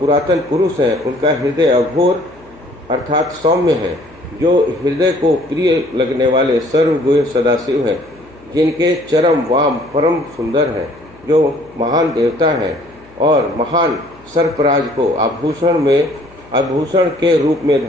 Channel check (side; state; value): left; noise; hum, 25 dB below the sound